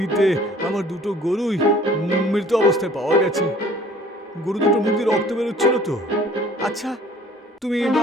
আমার দুটো গরুই মৃত অবস্থায় পাওয়া গেছে। গরু দুটো মুখ দিয়ে রক্ত বেরোচ্ছিল তো। আচ্ছা,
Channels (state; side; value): normal; both; correlation 0.52